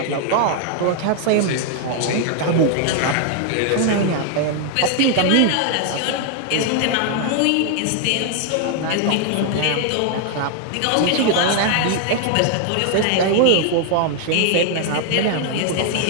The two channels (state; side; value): different; both; correlation 0.00